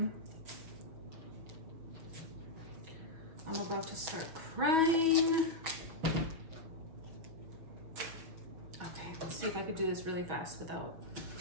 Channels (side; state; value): left; late; 6.1 ms